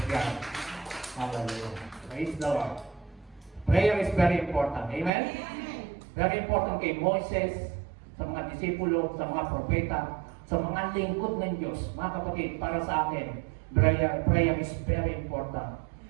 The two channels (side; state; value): left; drops out; at 5.1 s